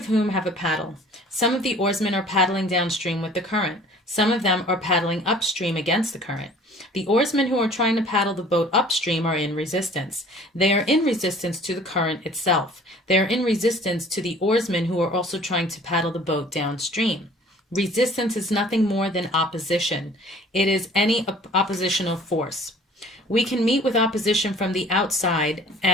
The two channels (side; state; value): both; normal; correlation 0.50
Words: whom have a paddle. Some of the oarsmen are paddling downstream with the current. Some of them are paddling upstream against the current. The oarsmen who are trying to paddle the boat upstream are in resistance. They are in resistance to the current itself. They are in resistance to the oarsmen who are also trying to paddle the boat downstream. Resistance is nothing more than opposition. It is any oppositional force. We can meet with opposition from the outside